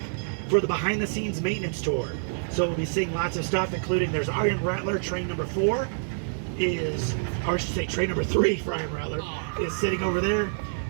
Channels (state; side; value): silent; left; digital silence